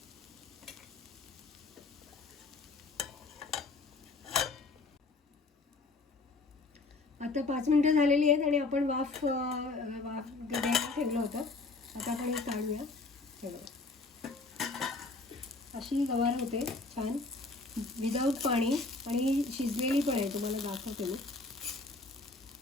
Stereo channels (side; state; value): right; quieter; 3.5 dB